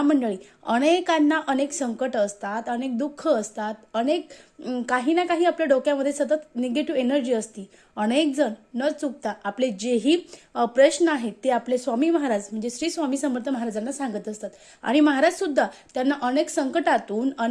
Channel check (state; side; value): identical; both; correlation 1.00